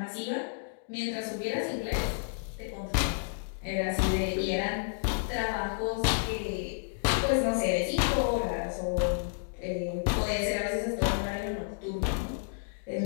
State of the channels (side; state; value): right; silent; digital silence